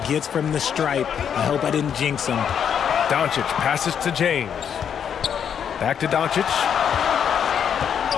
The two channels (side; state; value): right; quieter; 8.1 dB